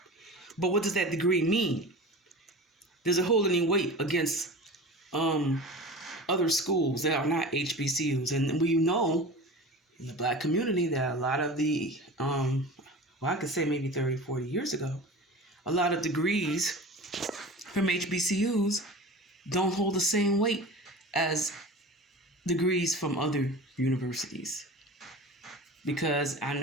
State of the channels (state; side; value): normal; both; correlation 0.34